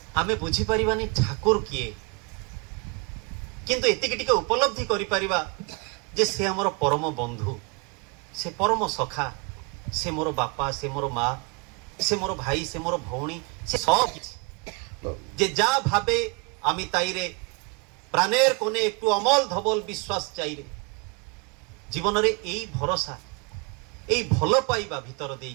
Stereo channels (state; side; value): quieter; left; 30.8 dB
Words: ଆମେ ବୁଝିପାରିବାନି ଠାକୁର କିଏ, କିନ୍ତୁ ଏତିକି ଟିକେ ଉପଲବ୍ଧି କରିପାରିବା ଯେ ସେ ଆମର ପରମ ବନ୍ଧୁ, ସେ ପରମ ସଖା, ସେ ମୋର ବାପା, ସେ ମୋର ମା, সে মোর ভাই, সে মোর ভৌণী, সে সব কিছু। যে যা ভাবে আমি তাইরে প্রাণের কোণে একটু অমল ধবল বিশ্বাস চাইরে। জীবନରେ এই ভরসা, এই ভাল পাইবা ভিতর